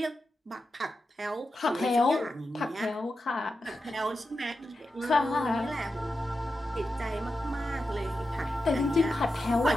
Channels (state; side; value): normal; both; correlation 0.90